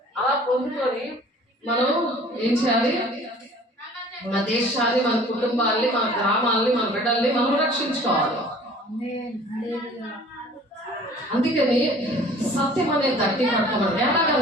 అలా పొందుకొని మనం ఏం చేయాలి? మన దేశాన్ని, మన కుటుంబాన్ని, మన గ్రామాలని, మన బిడ్డల్ని మనం రక్షించుకోవాలి. అందుకని సత్యం అనే దట్టి కట్టుకోవాలి.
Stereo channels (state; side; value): normal; both; correlation 0.49